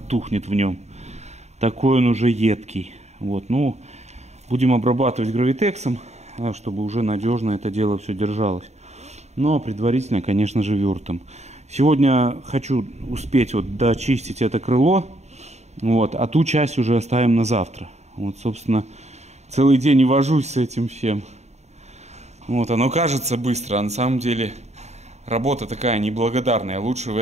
тухнет в нем. Такой он уже едкий. Вот, ну, будем обрабатывать гравитексом, чтобы уже надежно это дело все держалось. Но предварительно, конечно же, вюртом. Сегодня хочу успеть вот дочистить это крыло. Вот, а ту часть уже оставим на завтра. Вот, собственно, целый день и вожусь с этим всем. Вот, оно кажется быстро, а на самом деле работа такая неблагодарная. Лучше в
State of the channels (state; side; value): late; left; 0.32 ms